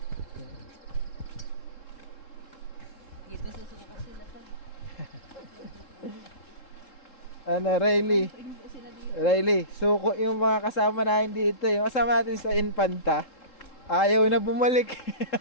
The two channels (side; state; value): right; late; 3.7 ms